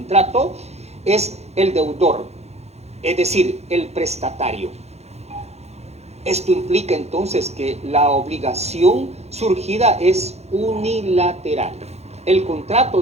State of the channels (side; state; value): left; late; 0.31 ms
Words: es el deudor, es decir, el prestatario. Esto implica entonces que la obligación surgida es unilateral. El contrato